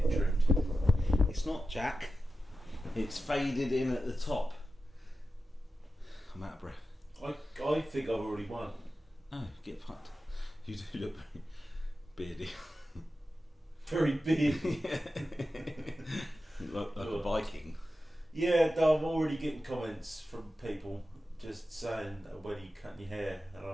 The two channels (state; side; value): normal; both; correlation 0.92